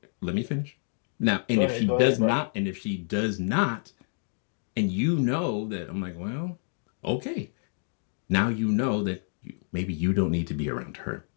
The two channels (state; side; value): silent; right; digital silence